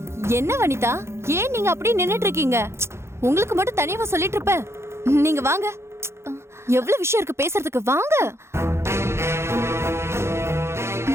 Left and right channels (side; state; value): left; late; 0.13 ms